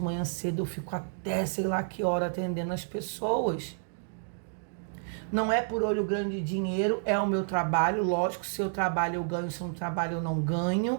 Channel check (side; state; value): left; silent; digital silence